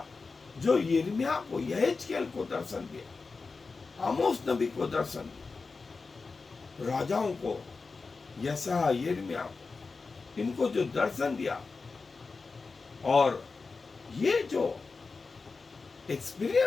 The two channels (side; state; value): right; quieter; 4.3 dB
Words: जो यिर्मयाह को, यहेजकेल को दर्शन दिया, आमोस नबी को दर्शन दिया, राजाओं को, यशायाह, यिर्मयाह, इनको जो दर्शन दिया, और ये जो